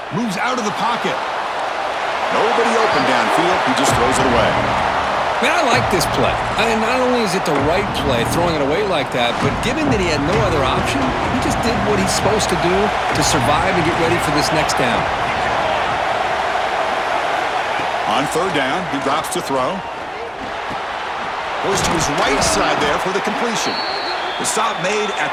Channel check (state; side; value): identical; both; correlation 1.00